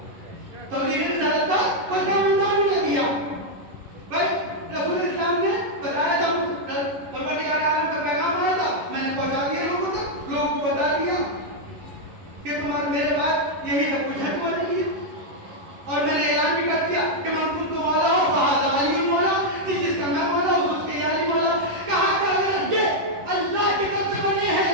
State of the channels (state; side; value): late; left; 11 ms